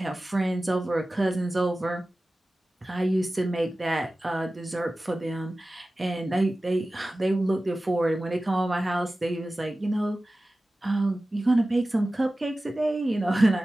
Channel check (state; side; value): normal; both; correlation 0.96